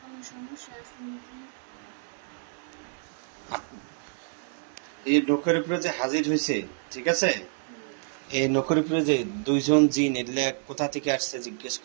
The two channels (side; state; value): left; silent; 59 dB below the other